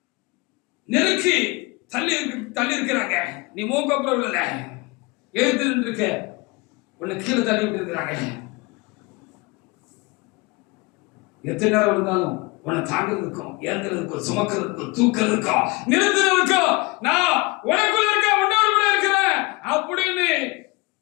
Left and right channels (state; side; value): quieter; right; 25.7 dB